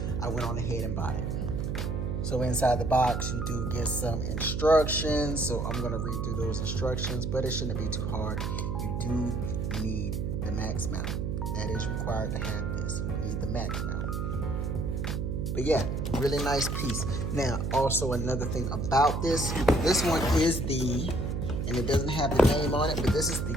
I went on ahead and bought it. So inside the box, you do get some instructions. So I'm gonna read through those instructions, but it shouldn't be too hard. You do need the max mount. That is required to have this. You need the max mount. But yeah, really nice piece. Now, also another thing about this one is and it doesn't have the name on it, but this is the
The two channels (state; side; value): noise; right; hum, 1 dB below the sound